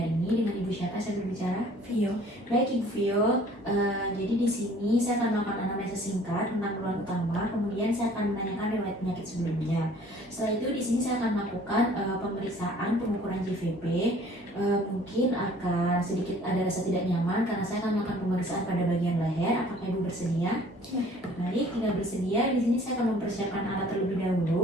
hari ini. Dengan Ibu siapa saya berbicara? Vio. Baik Ibu Vio, jadi di sini saya akan melakukan anamnesa singkat tentang keluhan utama, kemudian saya akan menanyakan riwayat penyakit sebelumnya. Setelah itu di sini saya akan melakukan pemeriksaan pengukuran JVP. Mungkin akan sedikit ada rasa tidak nyaman karena saya akan melakukan pemeriksaan pada bagian leher. Apakah Ibu bersedia? Ya. Baik, tinggal bersedia. Di sini saya akan mempersiapkan alat terlebih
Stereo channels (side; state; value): both; normal; correlation 0.53